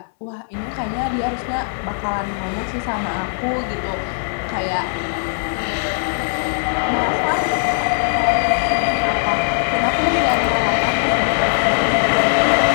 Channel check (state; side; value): silent; right; digital silence